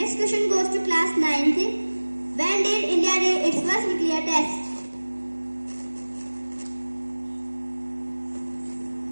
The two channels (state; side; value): inverted; both; correlation -1.00